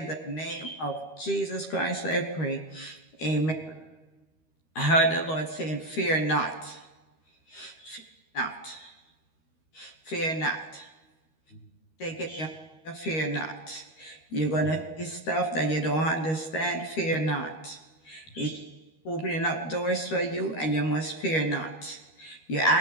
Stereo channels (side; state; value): right; late; 13 ms